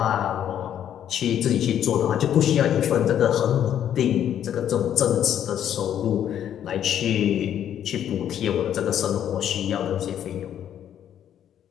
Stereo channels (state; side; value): quieter; right; 10.1 dB